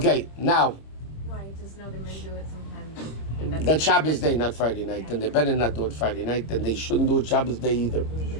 now, Why? Just know the men do it sometimes. that's Shabbos day, not Friday night, and they better not do it Friday night, and they shouldn't do it Shabbos day either.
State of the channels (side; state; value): right; late; 26 ms